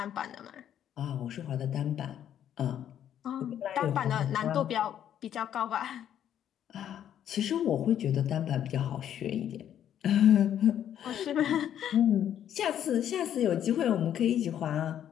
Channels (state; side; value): quieter; right; 10.2 dB